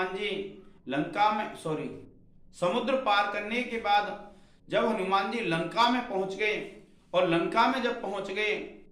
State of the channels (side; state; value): both; identical; correlation 1.00